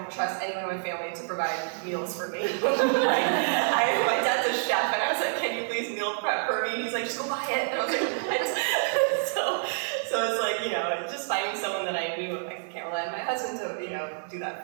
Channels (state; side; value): silent; left; digital silence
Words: trust anyone in my family to provide meals for me. My dad's a chef, and I was can you please meal prep for me? And he's just go buy it. And I was what? So it's you know, just finding someone that I knew I can't rely on my husband to, you know, do that